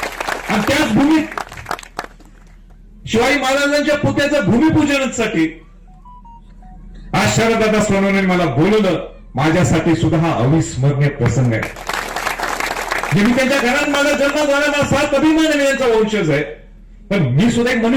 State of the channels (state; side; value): identical; both; correlation 1.00